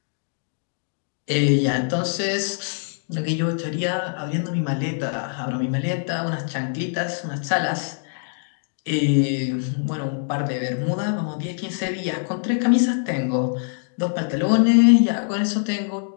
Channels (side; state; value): right; silent; digital silence